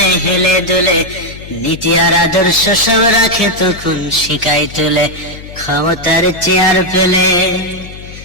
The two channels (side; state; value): left; noise; hum, 15 dB below the sound